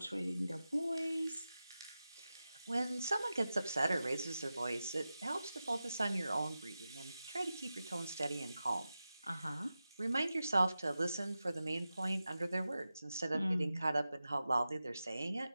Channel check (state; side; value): inverted; both; correlation -0.93